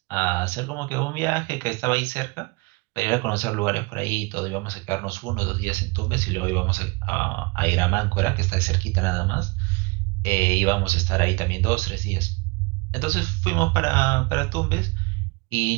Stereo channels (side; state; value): left; quieter; 27.2 dB